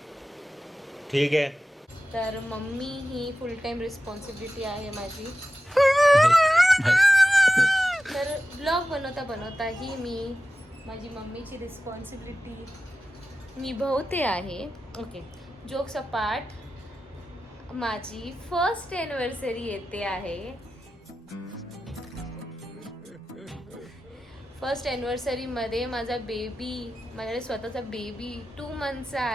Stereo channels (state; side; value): normal; both; correlation 0.93